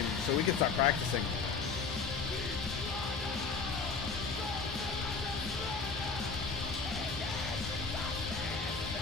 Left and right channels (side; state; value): right; quieter; 4.8 dB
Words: so we can start practicing.